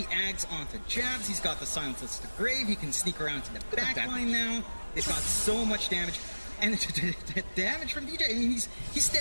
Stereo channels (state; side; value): inverted; both; correlation -1.00